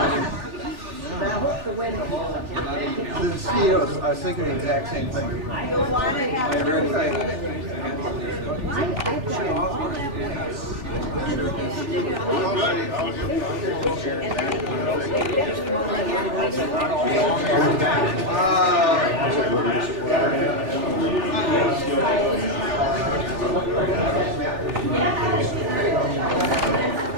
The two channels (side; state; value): left; late; 3.4 ms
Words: The mosquitoes, I was thinking the exact same thing. I really think.